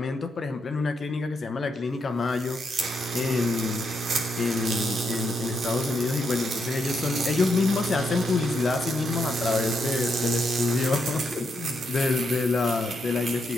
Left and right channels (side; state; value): both; normal; correlation 0.80